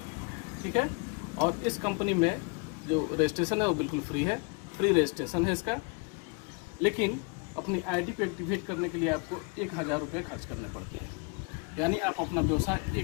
ठीक है। और इस कंपनी में जो रजिस्ट्रेशन है वो बिल्कुल फ्री है, फ्री रजिस्ट्रेशन है इसका। लेकिन अपनी आईडी को एक्टिवेट करने के लिए आपको 1000 रुपये खर्च करने पड़ते हैं, यानी आप अपना व्यवसाय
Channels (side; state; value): right; quieter; 32.8 dB